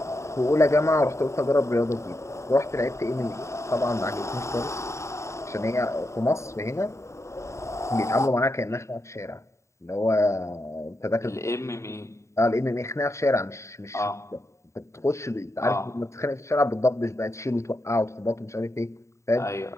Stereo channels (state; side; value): late; right; 0.14 ms